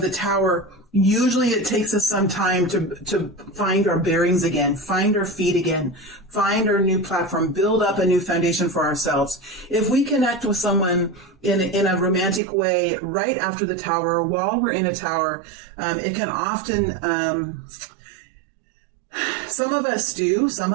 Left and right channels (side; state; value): left; drops out; at 12.4 s